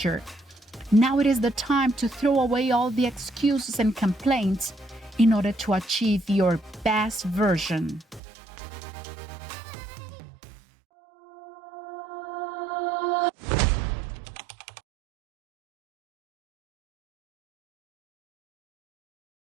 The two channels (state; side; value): drops out; left; at 8.2 s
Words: Now it is the time to throw away all the excuses and complaints in order to achieve your best version.